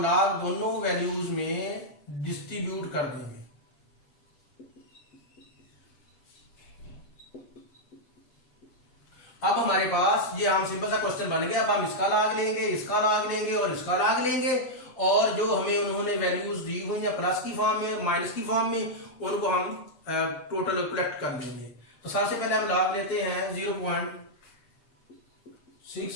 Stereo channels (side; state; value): right; late; 7.6 ms